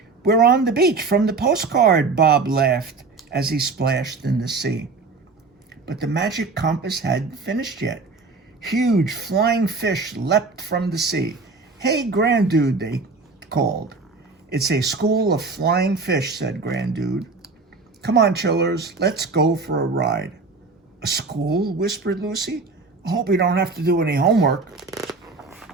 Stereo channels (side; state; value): left; quieter; 4.1 dB